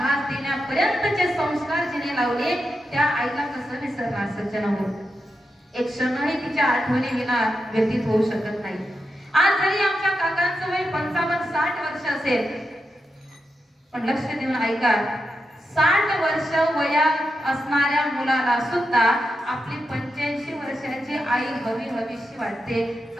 देण्यापर्यंतचे संस्कार जिने लावले त्या आईला कसं विसरणार सज्जनांनो. एक क्षणही तिच्या आठवणी विना व्यतीत होऊ शकत नाही. आज जरी आमच्या काकांचं वय 55-60 वर्ष असेल, पण लक्ष देऊन ऐका, 60 वर्ष वयात असणाऱ्या मुलाला सुद्धा आपली 85 वर्षाची आई हवी हवीशी वाटते.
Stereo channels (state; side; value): normal; both; correlation 0.87